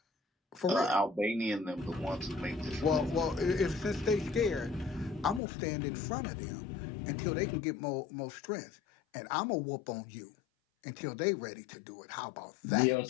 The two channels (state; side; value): drops out; right; at 5.4 s